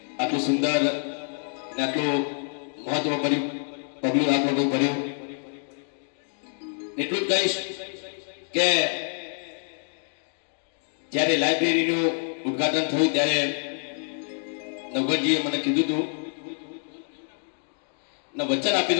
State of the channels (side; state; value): right; silent; 57 dB below the other